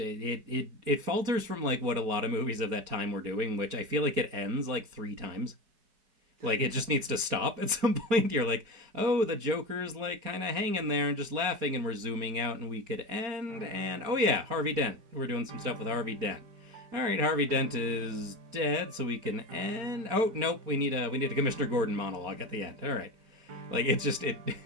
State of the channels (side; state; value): left; late; 4.3 ms